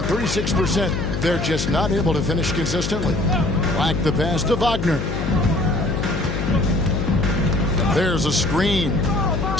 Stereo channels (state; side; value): noise; left; hum, 3 dB below the sound